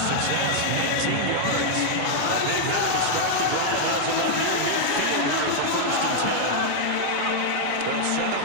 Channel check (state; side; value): different; both; correlation 0.00